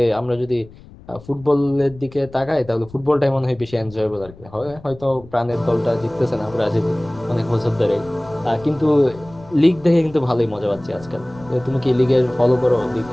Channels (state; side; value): noise; left; rumble, 21 dB below the sound